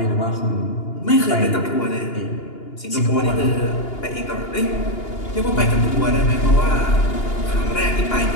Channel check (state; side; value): late; right; 2.8 ms